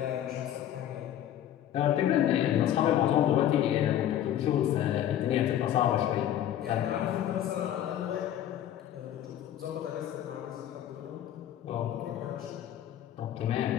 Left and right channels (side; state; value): right; quieter; 11.3 dB